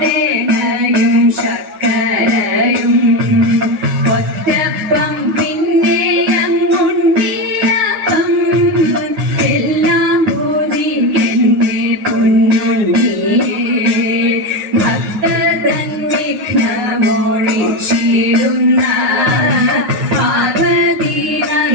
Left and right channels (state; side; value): late; left; 9.4 ms